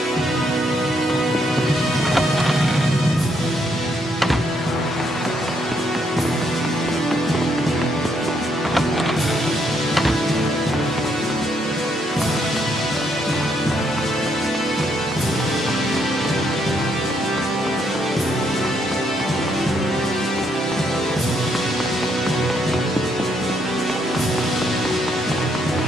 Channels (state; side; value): normal; both; correlation 0.74